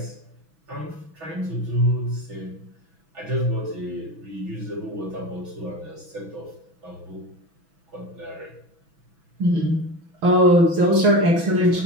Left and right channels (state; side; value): late; left; 6.1 ms